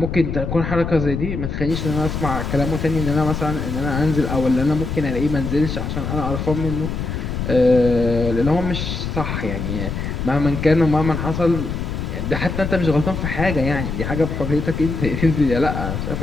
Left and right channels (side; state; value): left; noise; rumble, 4 dB below the sound